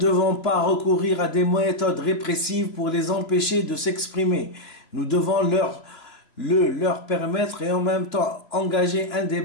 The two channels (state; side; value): late; right; 3.0 ms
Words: pas recourir à des méthodes répressives pour les empêcher de s'exprimer. Nous devons leur permettre et en même temps engager un